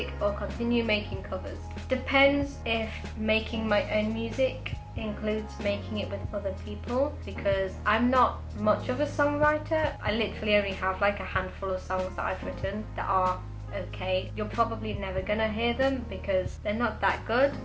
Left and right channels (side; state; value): both; identical; correlation 1.00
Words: or continue making covers? Depends if making my own music includes making it with other people, because I'm not much of a songwriter. I literally only have like a handful of songs that I've written that are okay. You're probably never gonna hear them because they're not that good.